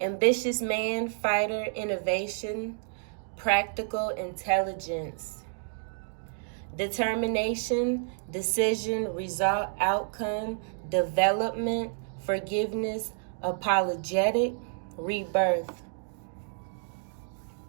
man, fighter, innovation, practical intelligence. Determination, decision, result, outcome, development, forgiveness, apologetic, rebirth.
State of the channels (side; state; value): left; silent; digital silence